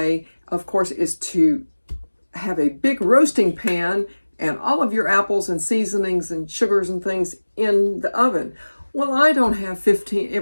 of course, is to have a big roasting pan and all of your apples and seasonings and sugars and things in the oven. Well, I don't have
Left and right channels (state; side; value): inverted; both; correlation -1.00